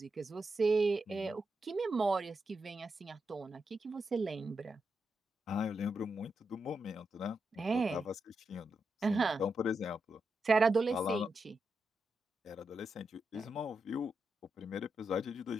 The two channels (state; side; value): normal; both; correlation 0.86